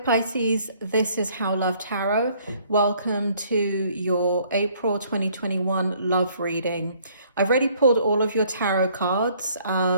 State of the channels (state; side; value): inverted; both; correlation -0.61